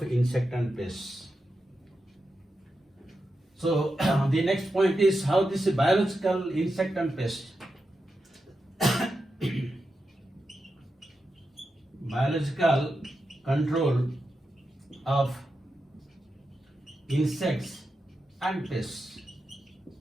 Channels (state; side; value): normal; both; correlation 0.89